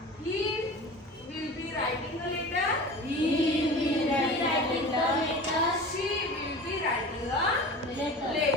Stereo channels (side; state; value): both; normal; correlation 0.36